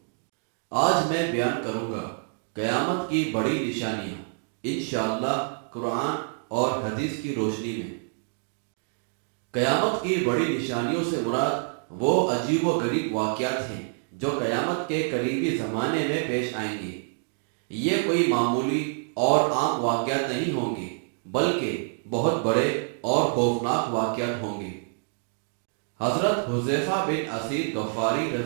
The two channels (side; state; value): left; silent; 60 dB below the other